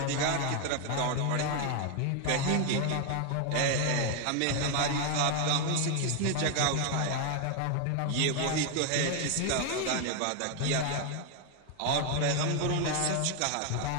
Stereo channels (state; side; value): different; both; correlation 0.01